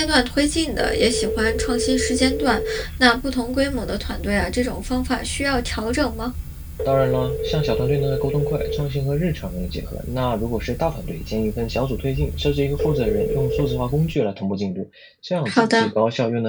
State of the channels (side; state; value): both; identical; correlation 1.00